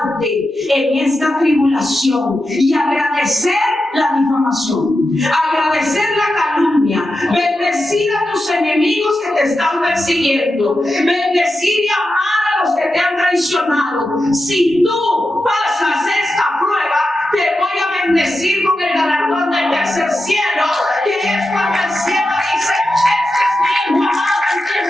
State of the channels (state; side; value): normal; both; correlation 0.90